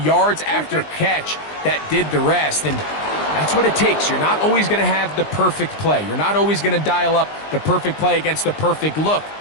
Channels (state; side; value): late; right; 20 ms